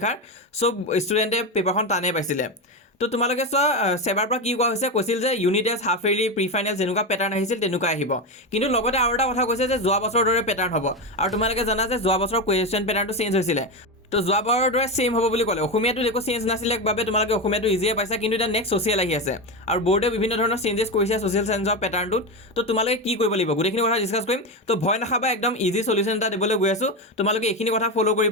চব ষ্টুডেণ্টে পেপাৰখন টানেই পাইছিলে। তো তোমালোকে চোৱা, চেবাৰ পৰা কি কোৱা হৈছে, কৈছিল যে unit test, half yearly, pre final যেনেকুৱা পেটাৰ্ণ আহিছিল তেনেকুৱা আহিব। কিন্তু লগতে আৰু এটা কথা কৈছে যে যোৱা বছৰৰ দৰে পেটাৰ্ণ হ'ব। আৰু তোমালোকে জানা যে যোৱা বছৰৰ কুৱেশ্যন পেটাৰ্ণটো চেঞ্জ হৈছিলে। তো যোৱাবাৰৰ দৰে ছেইম হ'ব বুলি ক'লে। অসমীয়াটো একো চেঞ্জ নাছিলে বাবে তোমালোকে অসমীয়াটো ইজিয়ে পাইছা, কিন্তু এতিয়া নেক্সট ছ'চিয়েল আহি আছে আৰু বৰ্ডে বিভিন্ন ধৰণৰ চেঞ্জেছ কৰিছে ছ'চিয়েল চায়েন্সৰ পেটাৰ্ণটোত। তো তোমালোকে কি কৰিব লাগিব, গোটেইখিনি কথা ডিছকাছ কৰিম। তো ভয় নাখাবা, একদম ইজি চলিউশ্যন এটা দিবলৈ গৈ আছোঁ। তোমালোকে এইখিনি কথা ফ'ল'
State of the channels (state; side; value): normal; both; correlation 0.16